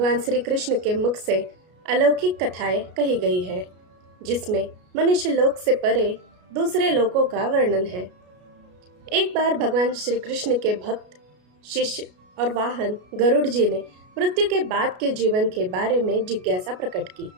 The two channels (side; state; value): left; late; 33 ms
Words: श्री कृष्ण के मुख से अलौकिक कथाएं कही गई है, जिसमें मनुष्य लोक से परे दूसरे लोकों का वर्णन है। एक बार भगवान श्री कृष्ण के भक्त, शिष्य और वाहन गरुड़ जी ने मृत्यु के बाद के जीवन के बारे में जिज्ञासा प्रकट की।